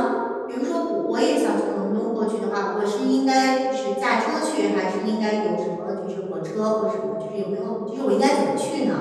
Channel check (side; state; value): both; identical; correlation 1.00